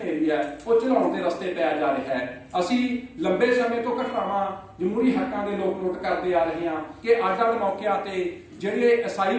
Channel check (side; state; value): both; identical; correlation 1.00